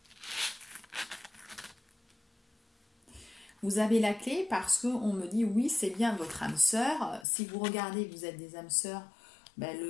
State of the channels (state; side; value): drops out; right; at 7.2 s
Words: Vous avez la clé parce qu'on me dit oui, c'est bien votre âme sœur. Si vous regardez, vous êtes des âmes sœurs, ben